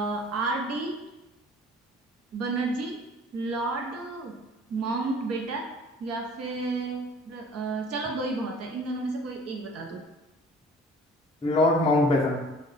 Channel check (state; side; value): normal; both; correlation 0.49